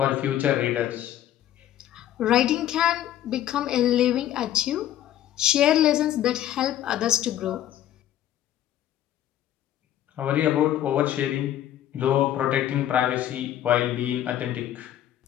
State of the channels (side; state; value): right; quieter; 12.0 dB